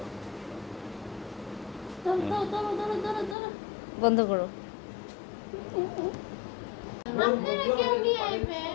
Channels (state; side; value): drops out; right; at 3.4 s